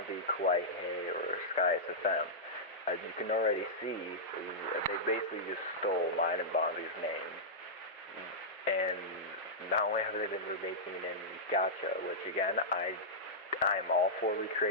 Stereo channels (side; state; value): both; normal; correlation -0.11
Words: Kawaii Hey or Sky SFM. As you can already see, they basically just stole mine and Bonzi's name. And not only have they been remaking in gacha, which again, I'm all for